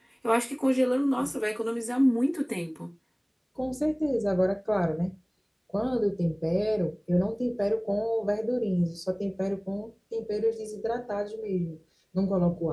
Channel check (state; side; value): identical; both; correlation 1.00